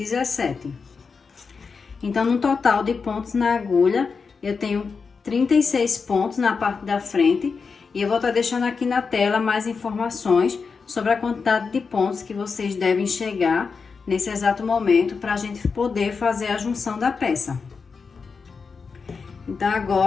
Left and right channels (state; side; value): quieter; right; 5.1 dB